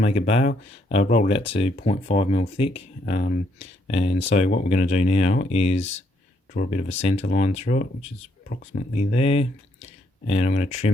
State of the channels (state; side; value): normal; both; correlation 0.72